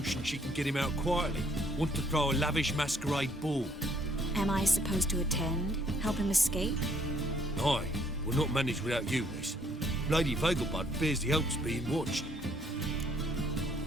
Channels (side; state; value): both; normal; correlation 0.65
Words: she can get him out quietly. Wants to throw a lavish masquerade ball. Am I supposed to attend? Help him escape? Aye, we'll not manage without you, miss. Lady Vegelbud fears the Alps being watched.